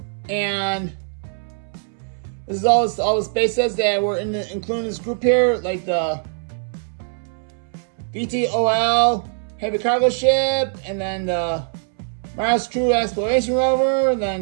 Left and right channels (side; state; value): left; silent; 64 dB below the other